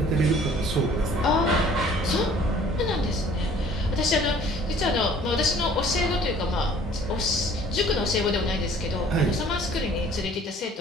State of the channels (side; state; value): both; normal; correlation 0.53